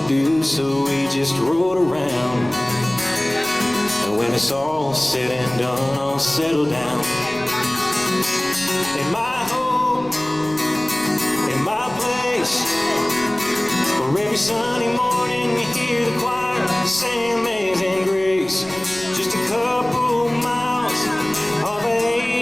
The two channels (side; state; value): left; noise; rumble, 23 dB below the sound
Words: do, so we just rode around. And when it's all said and done, I'll settle down in my home, in my place, where every Sunday morning you hear the choir sing Amazing Grace. Just a couple miles off of